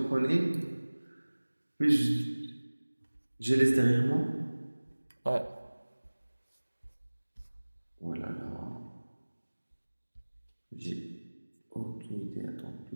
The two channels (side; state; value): both; inverted; correlation -1.00